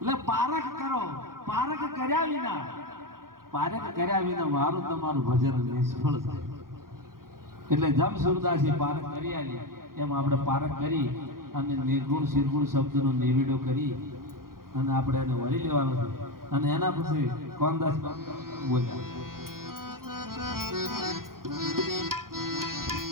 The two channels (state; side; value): late; left; 0.92 ms